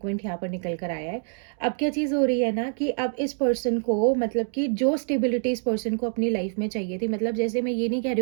यहाँ पर निकल कर आया है। अब क्या चीज़ हो रही है ना, कि अब इस पर्सन को मतलब कि जो स्टेबिलिटी इस पर्सन को अपनी लाइफ में चाहिए थी, मतलब जैसे मैं ये नहीं कह रही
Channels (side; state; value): left; silent; 61 dB below the other